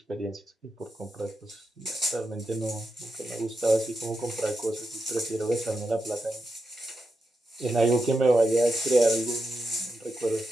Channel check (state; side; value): normal; both; correlation 0.87